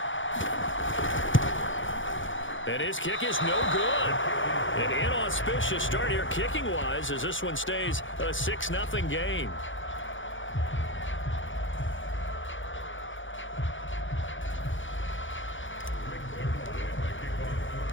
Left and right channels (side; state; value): right; late; 0.56 ms